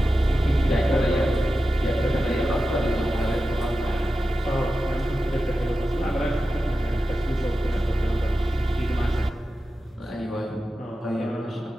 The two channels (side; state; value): both; normal; correlation 0.92